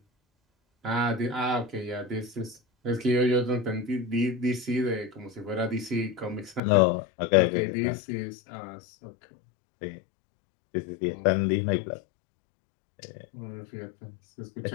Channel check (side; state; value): right; drops out; at 6.6 s